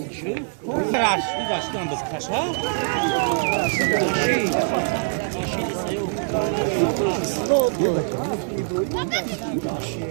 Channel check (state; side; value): silent; left; digital silence